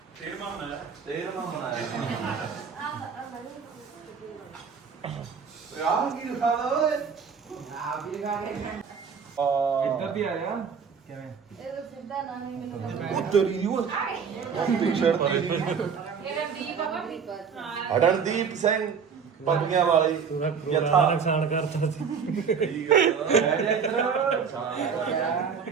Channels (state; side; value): quieter; left; 6.4 dB